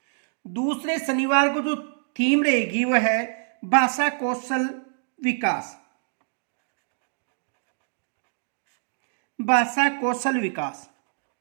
दूसरे शनिवार को जो थीम रहेगी वह है भाषा कौशल विकास। भाषा कौशल विकास।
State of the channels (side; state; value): left; silent; digital silence